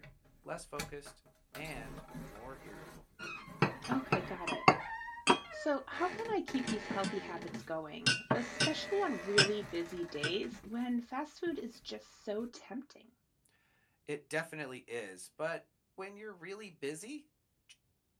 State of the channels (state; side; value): identical; both; correlation 1.00